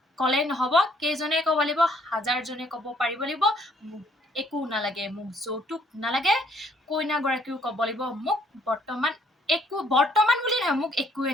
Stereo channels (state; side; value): normal; both; correlation 0.65